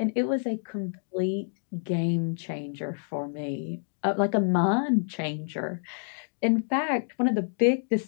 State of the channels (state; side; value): silent; right; digital silence